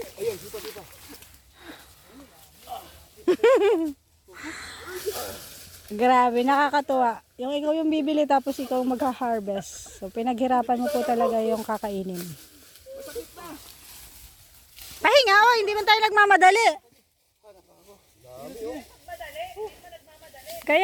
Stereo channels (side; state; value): both; identical; correlation 1.00